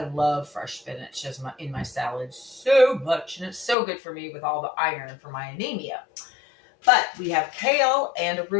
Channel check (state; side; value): drops out; right; at 3.8 s